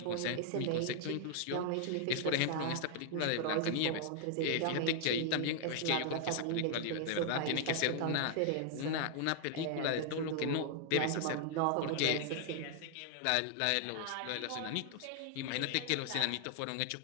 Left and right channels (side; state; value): both; different; correlation 0.00